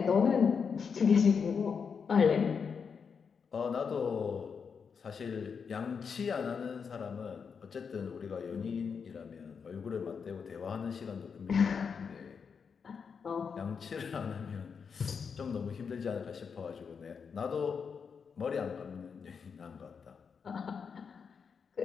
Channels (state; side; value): quieter; right; 6.1 dB